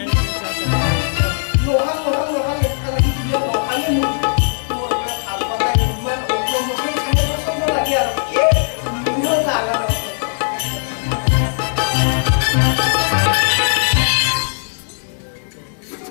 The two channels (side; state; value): right; silent; digital silence